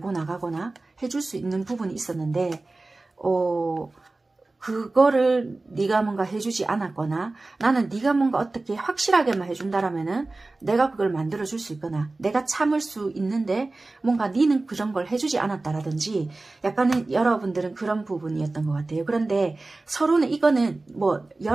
나가거나 해줄 수 있는 부분이 있었는데 그거를 네가 뭔가 해주지 않았거나 나는 네가 뭔가 어떻게 확실하게만 해준다라면은 내가 그걸 만들어줄 수 있거나 내가 참을 수 있는데 뭔가 네는 그런 걸 해주지 않았다라든지 약간은 여러분들은 그런 부분이었던 것 같아요. 그런데 서로는 이거는 뭐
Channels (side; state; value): left; quieter; 3.2 dB